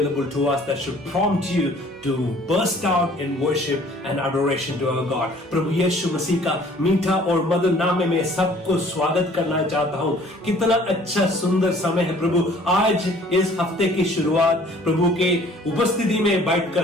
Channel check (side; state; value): both; normal; correlation 0.54